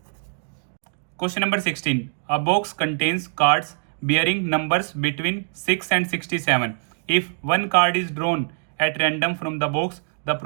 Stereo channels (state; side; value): silent; left; digital silence